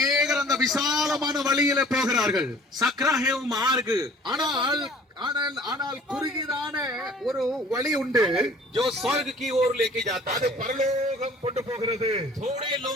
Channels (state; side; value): normal; both; correlation 0.50